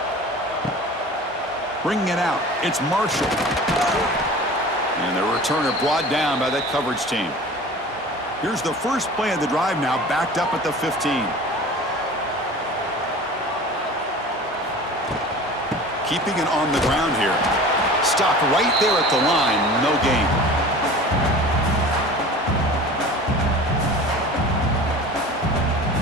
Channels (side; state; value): both; normal; correlation 0.40